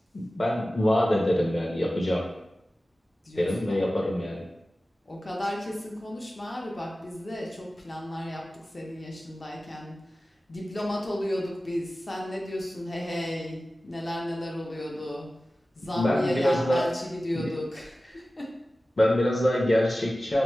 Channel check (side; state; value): both; normal; correlation 0.96